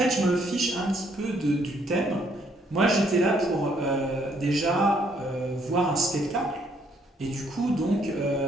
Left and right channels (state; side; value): normal; both; correlation 0.68